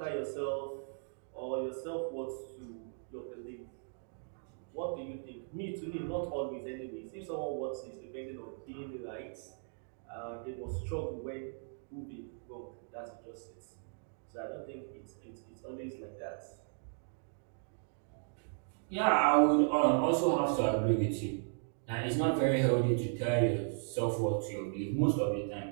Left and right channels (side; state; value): left; silent; digital silence